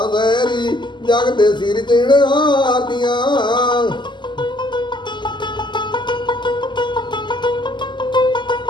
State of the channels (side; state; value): right; late; 0.22 ms